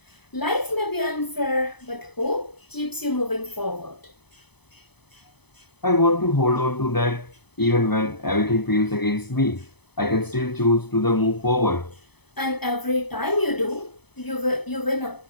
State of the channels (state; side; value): late; right; 0.98 ms